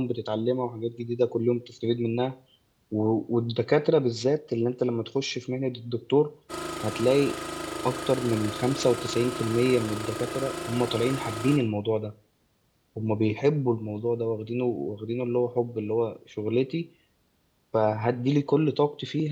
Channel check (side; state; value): both; identical; correlation 1.00